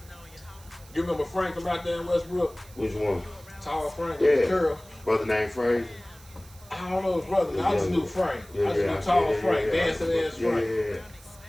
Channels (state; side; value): noise; right; hiss, 23 dB below the sound